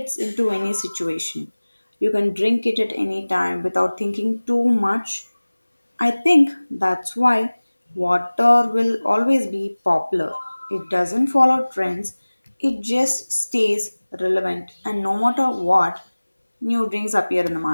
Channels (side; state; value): both; inverted; correlation -1.00